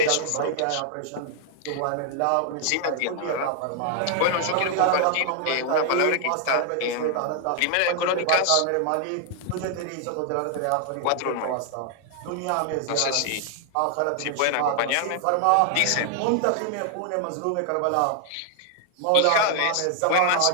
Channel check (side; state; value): both; different; correlation 0.00